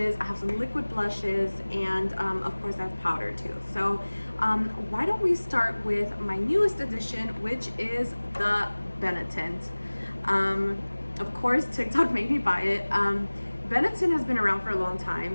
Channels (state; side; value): inverted; both; correlation -1.00